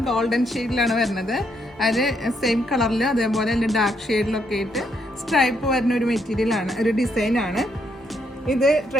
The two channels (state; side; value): normal; both; correlation 0.75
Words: ഗോൾഡൻ ഷെയ്ഡിലാണ് വരുന്നത്. അത് സെയിം കളറിൽ അതേപോലെ തന്നെ ഡാർക്ക് ഷെയ്ഡിലൊക്കെ ആയിട്ട് സ്ട്രൈപ്പ് വരുന്ന ഒരു മെറ്റീരിയലാണ്, ഒരു ഡിസൈനാണ്. ഇത്